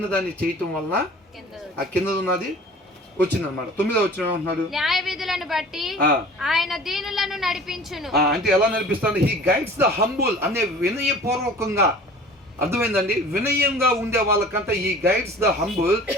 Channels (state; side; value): normal; both; correlation 0.44